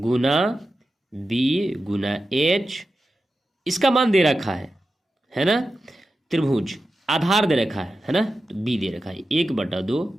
बी गुना एच, इसका मान दे रखा है ना। त्रिभुज आधार दे रखा है ना, तो बी दे रखा है 1/2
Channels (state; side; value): normal; both; correlation 0.91